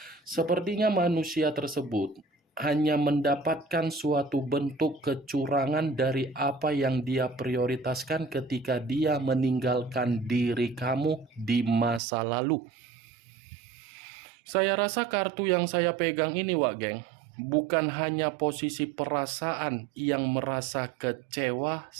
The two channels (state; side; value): drops out; left; at 12.0 s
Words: Sepertinya manusia tersebut hanya mendapatkan suatu bentuk kecurangan dari apa yang dia prioritaskan ketika dia meninggalkan diri kamu di masa lalu. Saya rasa kartu yang saya pegang ini, Wak Geng, bukan hanya posisi perasaan yang merasa kecewa,